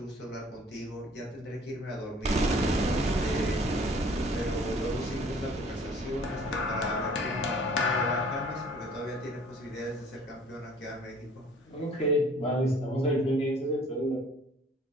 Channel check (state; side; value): normal; both; correlation 0.53